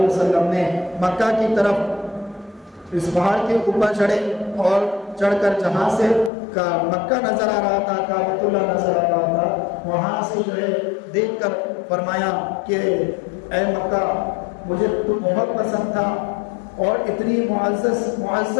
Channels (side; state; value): right; drops out; at 6.3 s